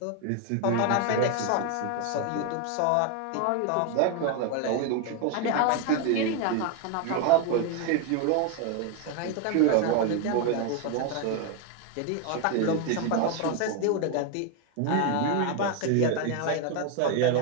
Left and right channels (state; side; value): different; both; correlation 0.01